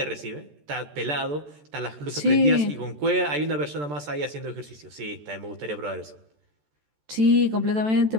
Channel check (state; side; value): late; left; 14 ms